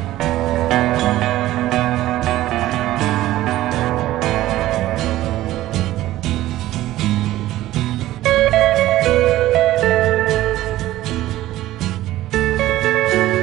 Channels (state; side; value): quieter; left; 15.2 dB